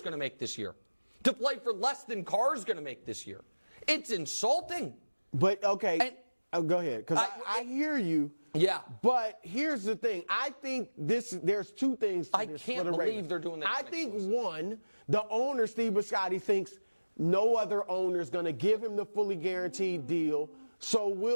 going to make this year. To play for less than Carr's going to make this year. It's insulting. But, okay, And- go ahead, because I hear you. Yeah. But here's the thing. I think there's two things to I this can't for the believe Ravens. they're doing that I think, non-exclusive. one, the owner, Steve Bisciotti, thinks no other owner is going to give him the fully guaranteed deal.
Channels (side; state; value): both; inverted; correlation -1.00